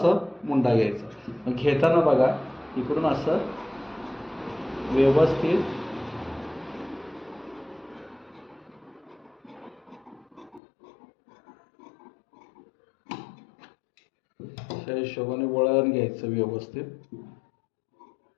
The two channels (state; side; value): drops out; right; at 10.6 s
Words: मुंडा घ्यायचा. मग घेताना बघा, इकडून असं व्यवस्थित त्या हिशोबाने वळण घ्यायचं व्यवस्थित.